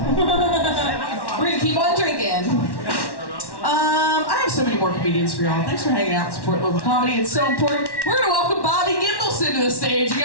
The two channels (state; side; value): late; right; 1.1 ms